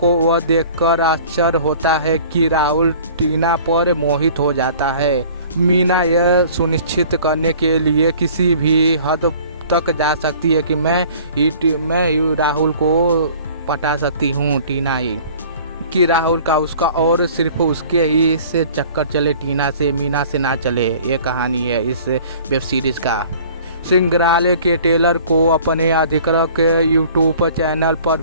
वह देखकर आश्चर्य होता है कि राहुल टीना पर मोहित हो जाता है। मीना यह सुनिश्चित करने के लिए किसी भी हद तक जा सकती है कि मैं राहुल को पटा सकती हूँ टीना ही कि राहुल का उसका और सिर्फ उसके ही से चक्कर चले, टीना से मीना से ना चले। ये कहानी है इस वेब सीरीज का। संग्रहालय के ट्रेलर को अपने अधिकृत यूट्यूब चैनल पर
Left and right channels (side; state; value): both; inverted; correlation -0.49